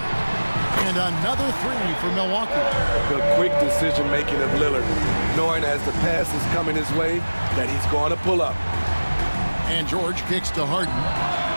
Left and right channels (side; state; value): both; inverted; correlation -1.00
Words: And another 3 for Milwaukee. The quick decision-making of Lillard, knowing as the pass is coming his way that he's going to pull up. And George kicks to Harden.